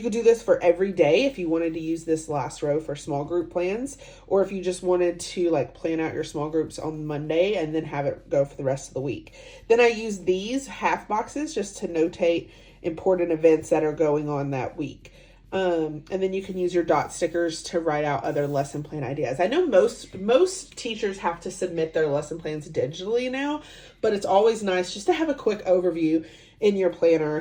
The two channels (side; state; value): both; identical; correlation 1.00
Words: could do this for every day if you wanted to use this last row for small group plans, or if you just wanted to like plan out your small groups on Monday and then have it go for the rest of the week. Then I use these half boxes just to notate important events that are going on that week. And then you can use your dot stickers to write out other lesson plan ideas. I know most teachers have to submit their lesson plans digitally now, but it's always nice just to have a quick overview in your